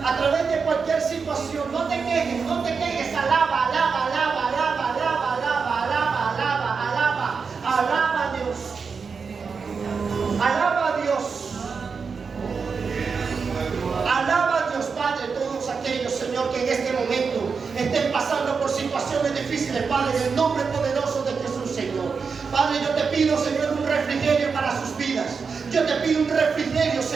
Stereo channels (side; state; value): left; quieter; 5.4 dB